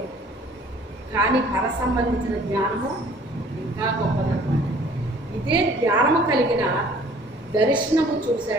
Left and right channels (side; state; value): both; normal; correlation 0.53